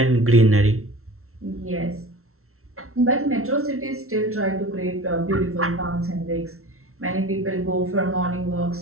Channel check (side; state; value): left; late; 0.63 ms